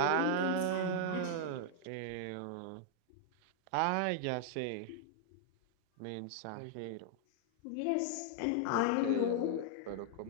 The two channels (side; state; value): both; different; correlation -0.01